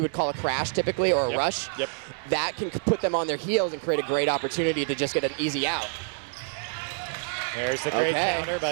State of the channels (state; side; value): silent; left; digital silence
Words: call a crash typically, or a rush, that can put them on their heels and create a great opportunity to just get an easy out. There's the great counter